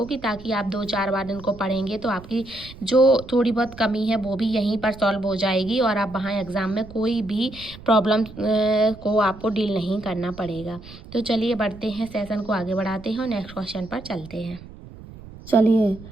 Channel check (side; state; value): right; noise; rumble, 17 dB below the sound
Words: कि ताकि आप 2-4 बार इनको पढ़ेंगे तो आपकी जो थोड़ी बहुत कमी है वो भी यहीं पर सॉल्व हो जाएगी, और आप वहाँ एग्ज़ाम में कोई भी प्रॉब्लम को आपको डील नहीं करना पड़ेगा। तो चलिए बढ़ते हैं, सेशन को आगे बढ़ाते हैं और नेक्स्ट क्वेश्चन पर चलते हैं। चलिए,